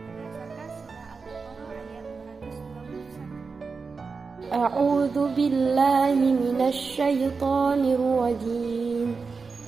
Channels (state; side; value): quieter; left; 4.8 dB